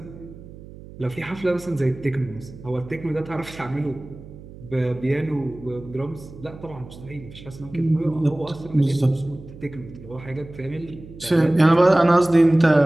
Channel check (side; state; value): right; noise; hum, 17 dB below the sound